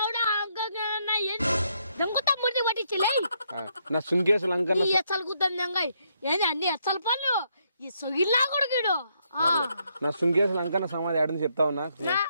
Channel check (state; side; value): inverted; both; correlation -0.75